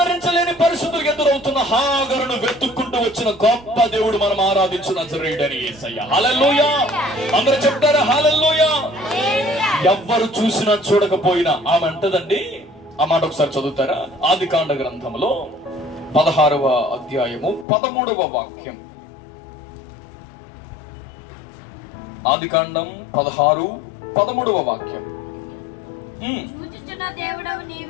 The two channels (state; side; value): drops out; right; at 17.7 s